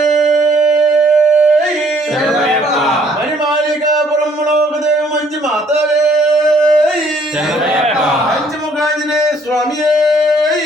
మణిమాళికాపురమ్మలో దేవ మంచి మాతవే పంచముఖాంజనేయ స్వామి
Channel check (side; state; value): both; normal; correlation 0.63